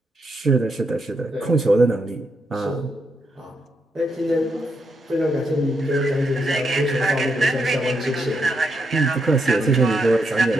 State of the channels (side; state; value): both; normal; correlation 0.80